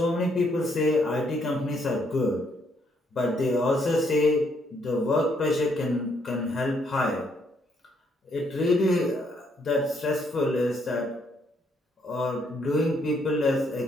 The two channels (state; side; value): normal; both; correlation 0.72